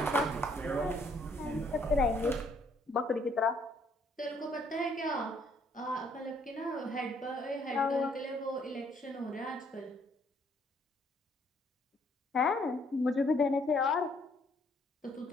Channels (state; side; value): normal; both; correlation 0.66